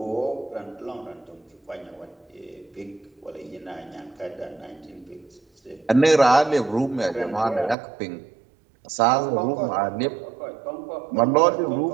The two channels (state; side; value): drops out; left; at 7.8 s